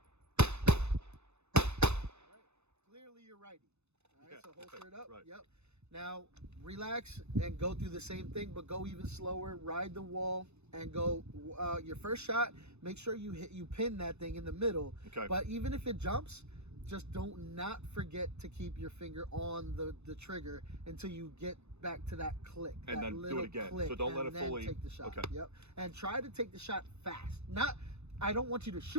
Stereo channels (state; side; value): late; left; 0.81 ms